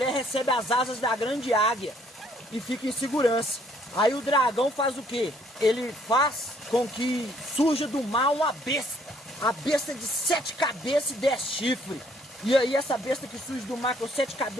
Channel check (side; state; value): both; normal; correlation 0.64